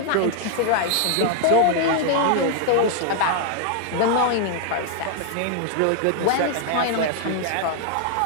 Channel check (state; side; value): different; both; correlation 0.00